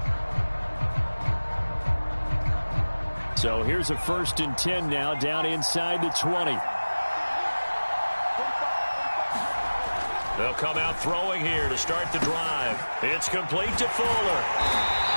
So here's a 1st and 10 now, down inside the 20. They'll come out throwing here to start the drive. It's complete to Fuller.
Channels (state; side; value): inverted; both; correlation -1.00